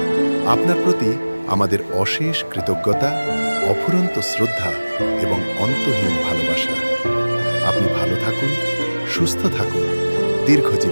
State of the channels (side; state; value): both; inverted; correlation -1.00